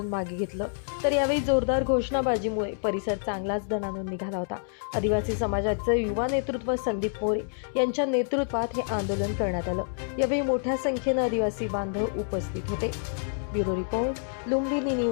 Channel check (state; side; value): silent; right; 60 dB below the other